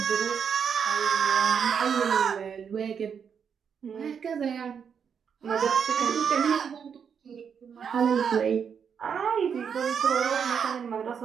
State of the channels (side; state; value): left; quieter; 7.1 dB